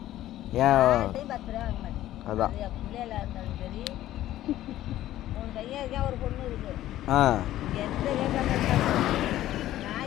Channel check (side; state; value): right; quieter; 13.8 dB